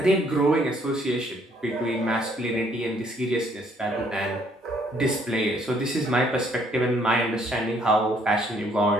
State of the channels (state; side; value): normal; both; correlation 0.66